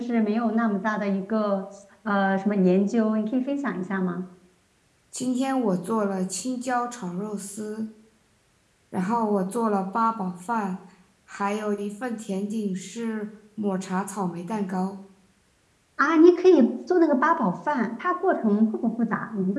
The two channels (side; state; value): both; identical; correlation 1.00